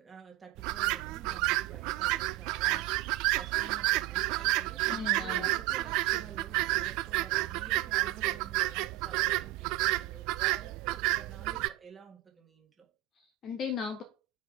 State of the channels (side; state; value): left; quieter; 14.1 dB